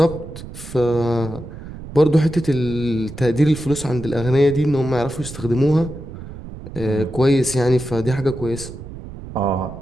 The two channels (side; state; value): right; noise; rumble, 13 dB below the sound